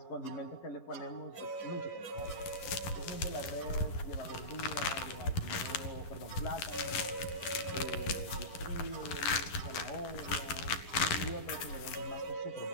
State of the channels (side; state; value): right; late; 11 ms